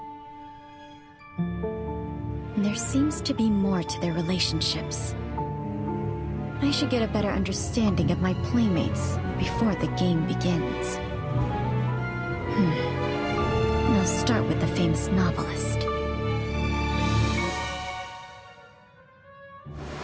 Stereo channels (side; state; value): both; identical; correlation 1.00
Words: There seems to be more to their relationships. I should get a better understanding of my playmates before the game begins. I'll start with the famous novelist.